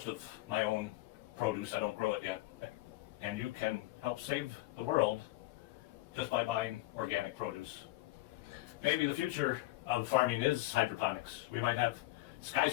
of my own produce. I don't grow it yet. And you can help save the world just by buying organic produce. Maybe the future of farming is hydroponics. We might have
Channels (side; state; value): right; quieter; 18.6 dB